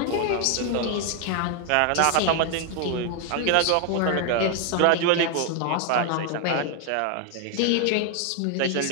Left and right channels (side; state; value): both; different; correlation 0.00